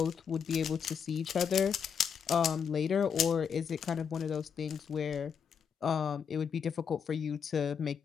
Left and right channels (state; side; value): quieter; right; 7.0 dB